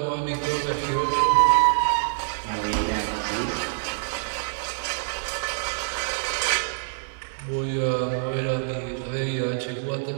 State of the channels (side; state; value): left; silent; 61 dB below the other